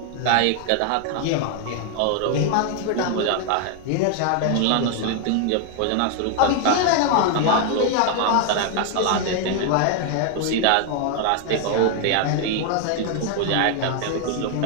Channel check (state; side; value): different; both; correlation 0.00